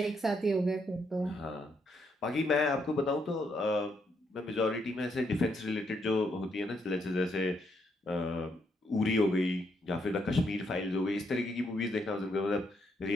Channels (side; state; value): both; normal; correlation 0.76